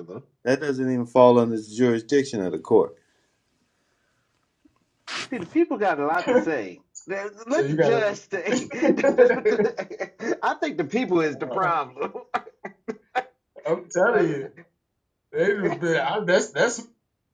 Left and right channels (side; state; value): both; identical; correlation 1.00